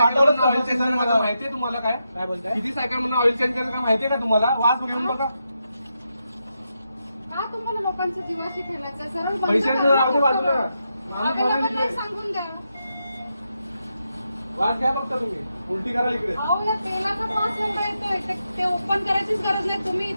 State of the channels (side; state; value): both; inverted; correlation -0.85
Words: ऑइल चेंज मला माहितीये तुम्हाला काय काय बोलताय? किती सायकल म्हणून ऑइल चेंज करायचं का माहितीये का तुम्हाला? वास घेऊन बघा. का तुम्हाला लोकांच्या जीवाशी खेळायचं? सरळ बंद पैशाचं करा. राहू दे बाजूला. आता लोकांना सांगून द्या. वास घ्या फक्त तुम्ही. उलटी करा इकडे. अहो या तेलाचा वास एवढा येतोय ते ओपन करायचीच गरज नाही. तुम्ही